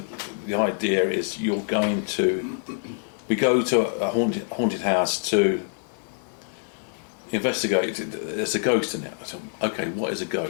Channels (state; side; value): silent; right; 61 dB below the other